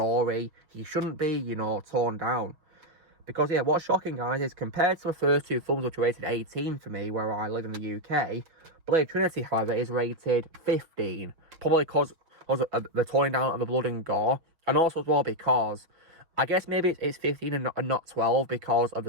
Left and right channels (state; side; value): late; left; 6.2 ms